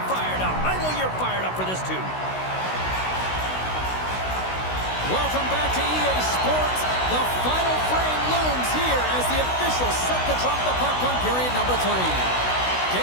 fired up. I know you're fired up for this too. Welcome back to EA Sports. The final frame looms here as the officials set to drop the puck on period number 3.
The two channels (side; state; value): right; late; 16 ms